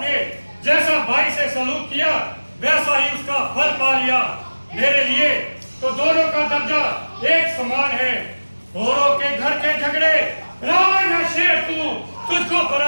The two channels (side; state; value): both; inverted; correlation -1.00